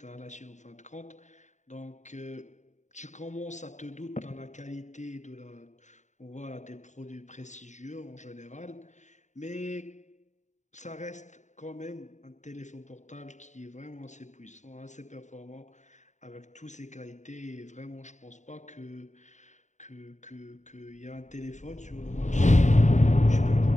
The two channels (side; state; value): right; late; 0.34 ms